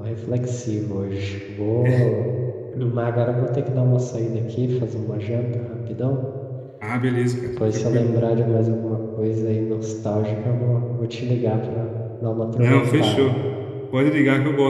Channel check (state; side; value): identical; both; correlation 1.00